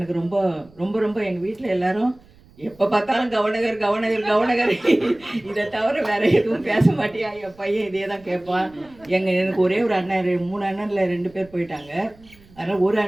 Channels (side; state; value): right; noise; rumble, 27 dB below the sound